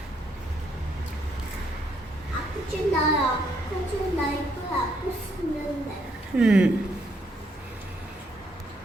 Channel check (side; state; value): both; normal; correlation 0.72